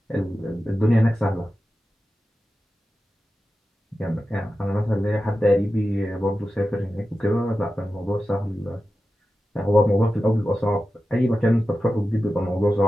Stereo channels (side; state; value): both; normal; correlation 0.93